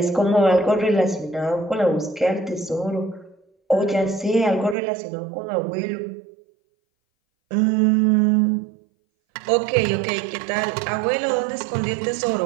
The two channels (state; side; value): drops out; left; at 4.8 s